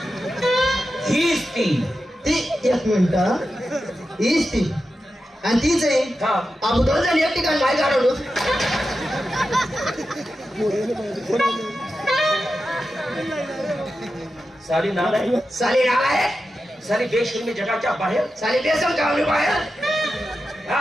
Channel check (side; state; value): both; normal; correlation 0.91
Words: हीच ती. एक मिनिट हीच ती आणि तीच आहे. आपण दोन जण एक ठिकाणी नाही काढवलो. साली नाल आहे साली बेशर्मी जगाच्या बाहेर साली बेसन कावली बाहेर.